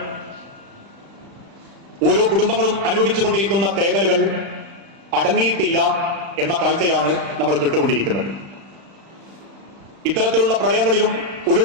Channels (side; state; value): left; late; 36 ms